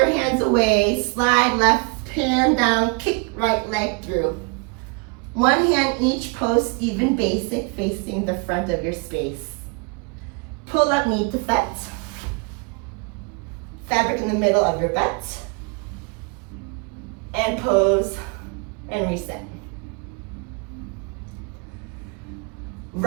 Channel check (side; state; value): left; quieter; 31.9 dB